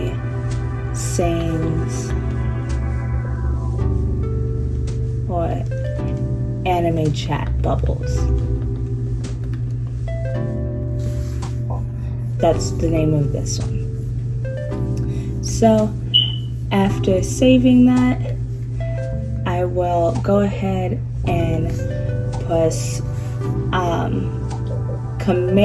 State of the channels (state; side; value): identical; both; correlation 1.00